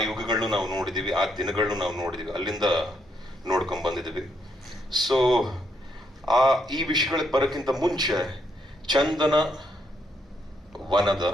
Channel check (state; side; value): normal; both; correlation 0.76